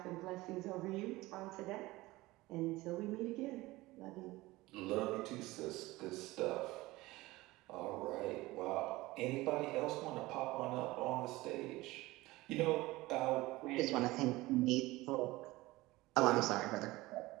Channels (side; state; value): left; quieter; 19.6 dB